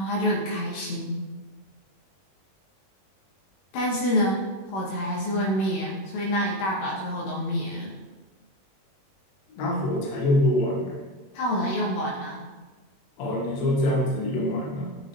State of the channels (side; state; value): right; late; 21 ms